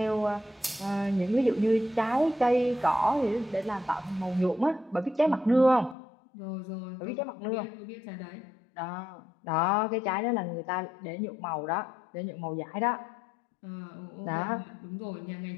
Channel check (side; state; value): right; drops out; at 6.0 s